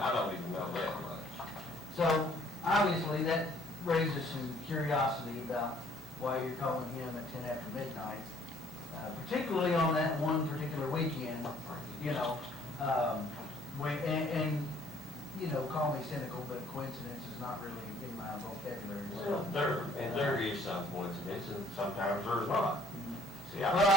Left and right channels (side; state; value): both; normal; correlation 0.60